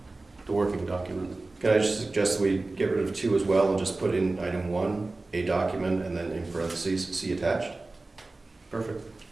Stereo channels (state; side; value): quieter; left; 3.2 dB